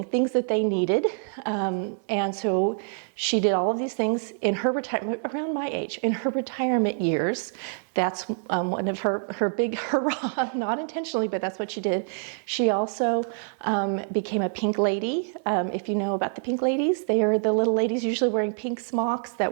things that they needed, and so she did all of these things in her retirement, around my age, in her retirement years. That's one of her big hurrah, not intentionally, but that's what she did. She also became a pink lady. If you know about the pink ladies, they are the little ladies usually wearing pink smocks that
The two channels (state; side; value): silent; left; 61 dB below the other